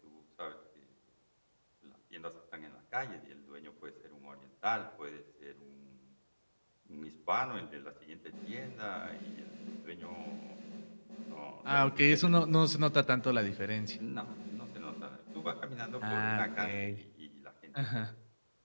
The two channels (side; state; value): both; inverted; correlation -1.00